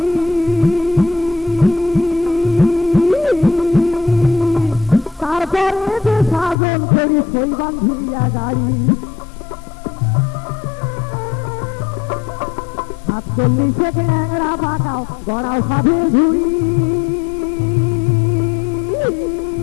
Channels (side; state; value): right; drops out; at 6.6 s